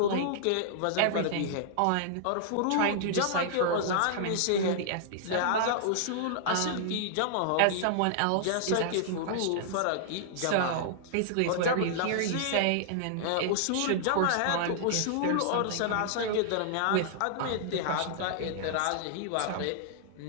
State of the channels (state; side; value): different; both; correlation -0.01